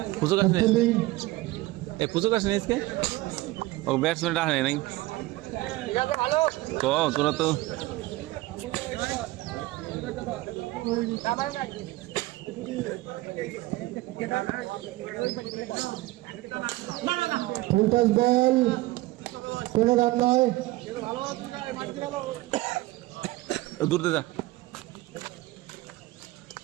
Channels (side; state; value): left; quieter; 19.1 dB